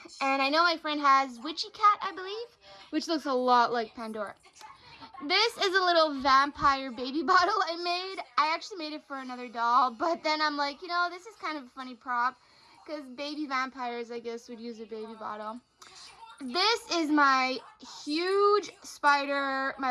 And I know my friend has Witchy Cat, I believe, which looks a lot like Pandora. This is a little vampire baby bottle I made. I actually made it for another doll, but then I'm like, you know, this is kind of a funny prop because baby vampires, I guess, would use a baby bottle. This is my huge spider,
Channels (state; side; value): identical; both; correlation 1.00